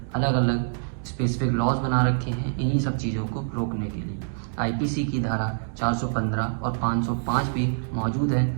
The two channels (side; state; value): left; silent; 61 dB below the other